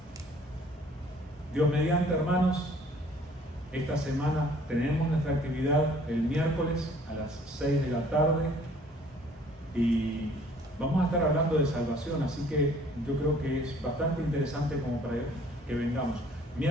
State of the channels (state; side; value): normal; both; correlation 0.56